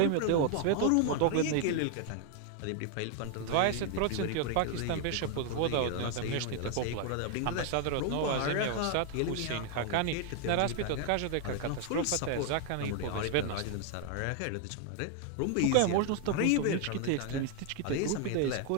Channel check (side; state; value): both; different; correlation 0.00